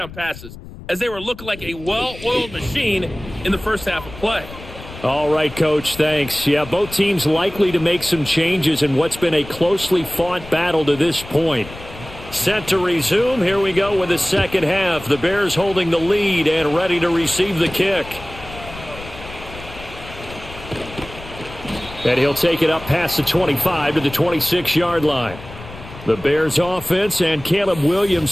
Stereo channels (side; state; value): left; noise; rumble, 15 dB below the sound